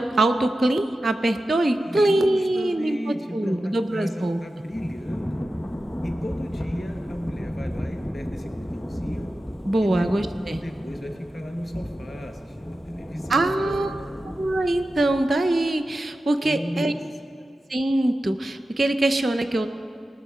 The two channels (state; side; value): normal; both; correlation 0.93